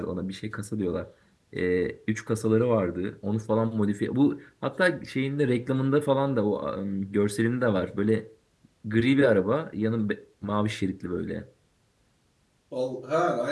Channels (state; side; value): identical; both; correlation 1.00